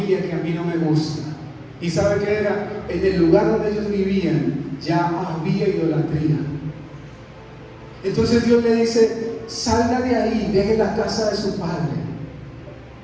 que a mí no me gusta. ¿Y sabe qué era? En el lugar donde ellos vivían ya había idolatría. Entonces Dios le dice: salga de ahí, deje la casa de su padre.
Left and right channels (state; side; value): identical; both; correlation 1.00